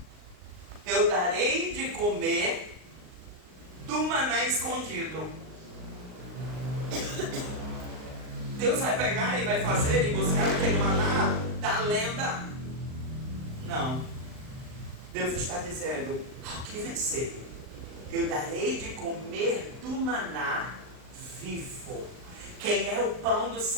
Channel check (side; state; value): left; late; 39 ms